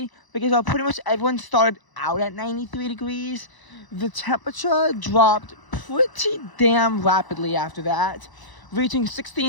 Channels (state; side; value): late; right; 1.0 ms